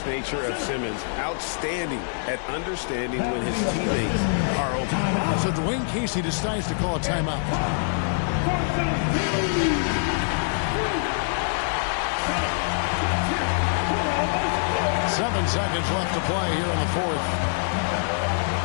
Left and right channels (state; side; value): silent; right; digital silence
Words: nature of Simmons, outstanding at understanding when his teammates are open. So Dwayne Casey decides to call a timeout. Seven seconds left to play here in the fourth.